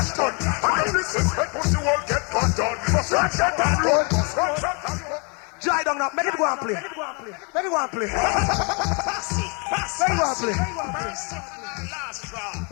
done. And this is when pussy world get cut down. Front shot and road. Dry down now, make it go and play. Make it go and play. Make it go and play.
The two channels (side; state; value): right; quieter; 34.1 dB